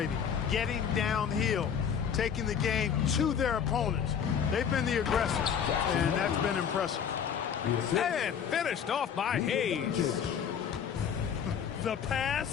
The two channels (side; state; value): right; quieter; 7.8 dB